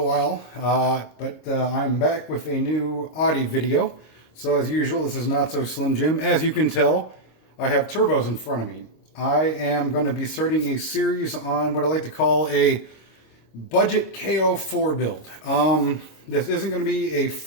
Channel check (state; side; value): late; right; 26 ms